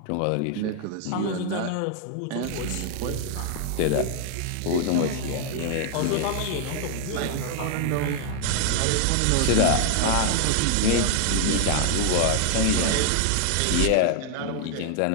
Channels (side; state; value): both; different; correlation 0.00